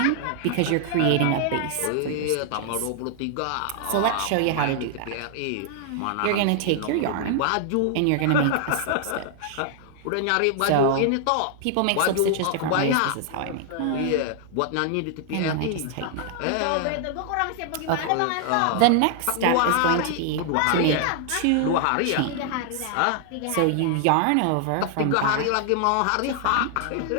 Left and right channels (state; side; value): different; both; correlation 0.00